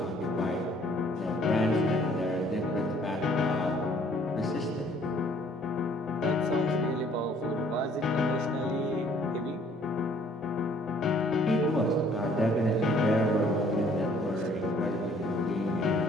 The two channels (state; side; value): normal; both; correlation 0.59